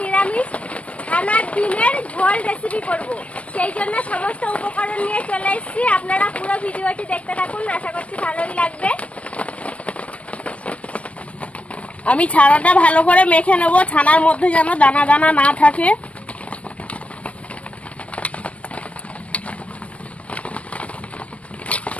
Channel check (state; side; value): late; right; 0.064 ms